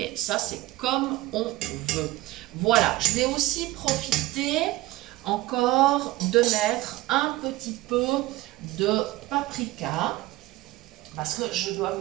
ça, c'est comme on veut. Voilà, je vais aussi profiter encore de mettre un petit peu de paprika. Parce que je dois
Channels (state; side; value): quieter; left; 18.1 dB